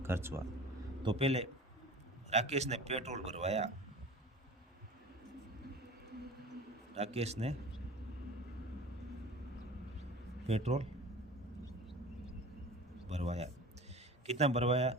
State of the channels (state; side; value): normal; both; correlation 0.39